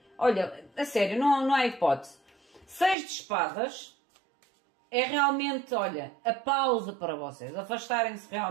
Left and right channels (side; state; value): left; drops out; at 3.0 s